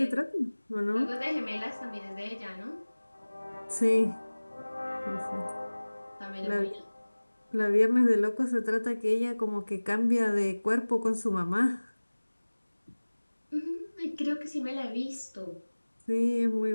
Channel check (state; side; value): inverted; both; correlation -1.00